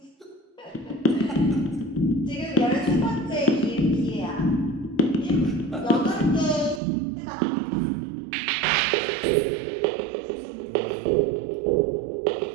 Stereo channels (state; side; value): drops out; left; at 6.8 s